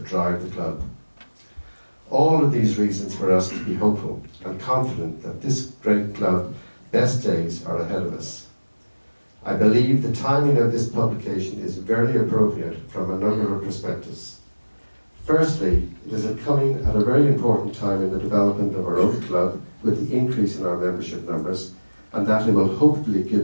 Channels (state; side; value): inverted; both; correlation -1.00